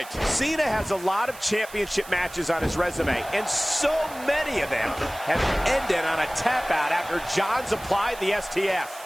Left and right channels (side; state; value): right; noise; hiss, 17 dB below the sound